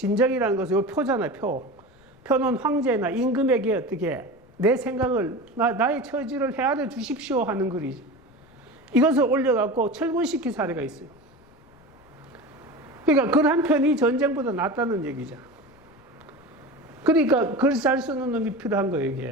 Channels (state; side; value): noise; left; rumble, 28 dB below the sound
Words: 것은 이 표잖아요, 표. 표는 황제나 임금에게 어떻게 내 생각을, 나의 처지를 헤아려 주십시오 하는 글이죠. 이것을 올려갖고 철군시킨 사례가 있어요. 그러니까 글 한 편이 전쟁보다 낫다는 얘기죠. 그러니까 글 잘 쓰는 놈이 필요한 거예요,